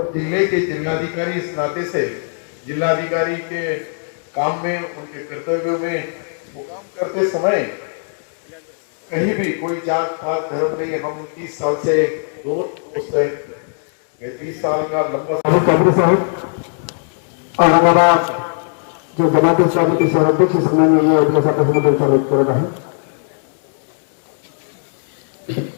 ضلع کے ضلعادھیکاری اس ناطے سے ضلعادھیکاری کے کام میں ان کے کرتویوں میں وہ کام کرتے سمے کہیں بھی کوئی جات پات دھرم نہیں، ہم 30 سال سے دونوں دوست ہیں۔ میں 30 سال کا لمبا قادری صاحب اورنگ آباد جو جماعت اسلامی کے سرحد اس میں یہ اجلاس کا سمجھ کر رہا ہے۔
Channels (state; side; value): silent; right; digital silence